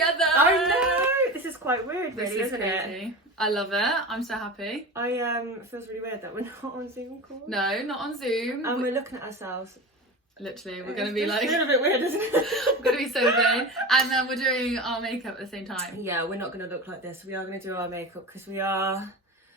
I know. This is quite weird, really, This is isn't crazy. it? I love it. I'm so happy. It feels really weird that we're not on Zoom call. No, not on Zoom. And we're looking at ourselves. Literally, we're going to be like... It's a little bit weird, isn't it? We're going to be so vain. And then we're doing our makeup at the same time. Yeah, we're not going to look like this. We are going to do our makeup because we are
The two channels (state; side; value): normal; both; correlation 0.29